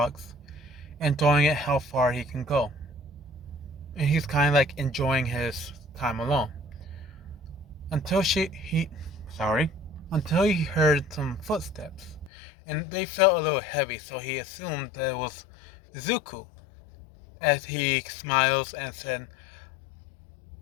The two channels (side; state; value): right; drops out; at 12.3 s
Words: enjoying it how far he can go. And he's kind of like enjoying his time alone. Until until he heard some footsteps, and they felt a little heavy, so he assumed that it was Zuko. As he smiles and said,